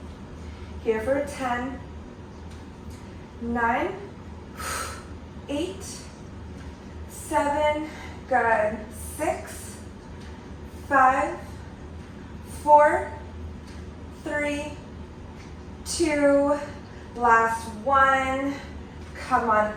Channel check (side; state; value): both; identical; correlation 1.00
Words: Here for 10, 9, 8, 7, good, 6, 5, 4, 3, 2, last 1. Come on